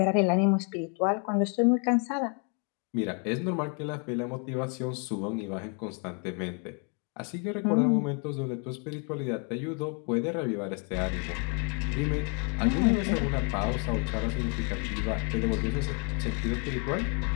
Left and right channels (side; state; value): right; quieter; 38.3 dB